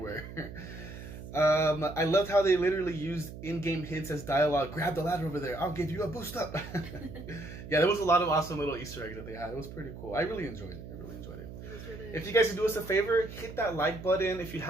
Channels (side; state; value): right; noise; hum, 12 dB below the sound